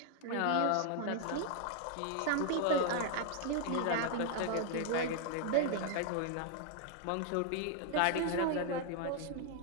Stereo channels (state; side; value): different; both; correlation 0.00